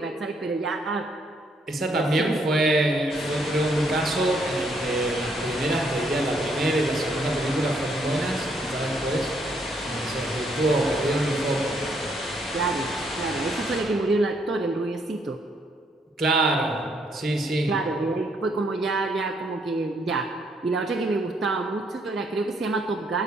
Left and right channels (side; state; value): both; normal; correlation 0.71